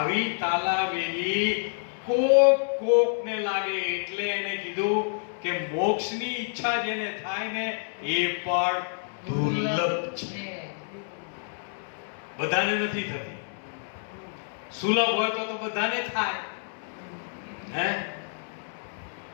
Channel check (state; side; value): silent; right; digital silence